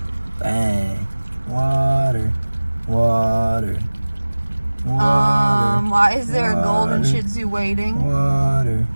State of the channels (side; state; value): both; inverted; correlation -1.00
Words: bang. Water, water, water. Why is there a golden water, Shih-Tzu waiting? Water.